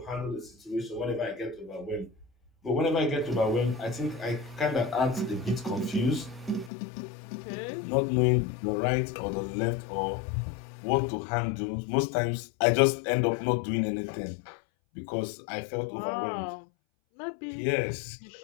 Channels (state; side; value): drops out; right; at 6.7 s